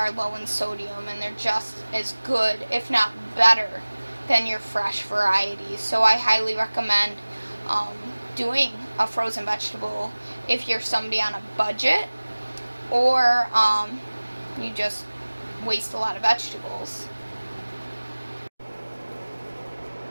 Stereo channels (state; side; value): inverted; both; correlation -1.00